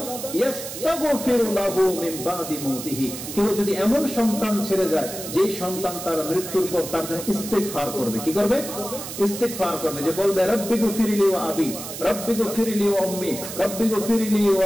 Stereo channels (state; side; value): noise; right; hiss, 9 dB below the sound